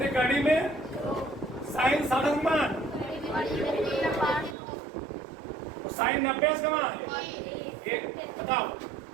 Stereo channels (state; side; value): drops out; left; at 4.5 s